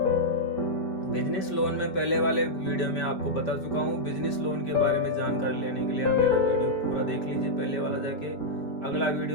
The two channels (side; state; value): right; late; 5.2 ms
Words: बिजनेस लोन में पहले वाले वीडियो में आपको बता चुका हूँ। बिजनेस लोन के बारे में जानकारी लेने के लिए आप मेरा वीडियो पूरा देख लीजिए, पहले वाला जाके। अगला